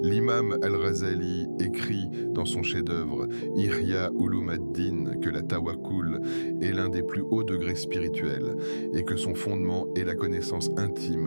L'imam Al-Ghazali écrit dans son chef-d'œuvre Ihya Ulum ad-Din que la tawakkul est l'un des plus hauts degrés spirituels et que son fondement est la connaissance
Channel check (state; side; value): inverted; both; correlation -1.00